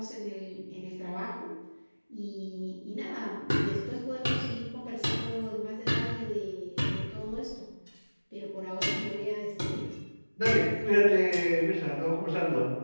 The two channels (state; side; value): inverted; both; correlation -1.00